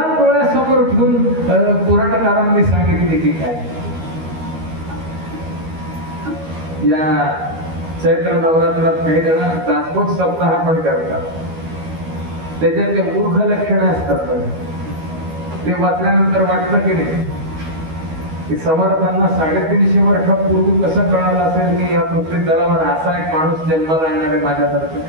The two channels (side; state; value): left; late; 13 ms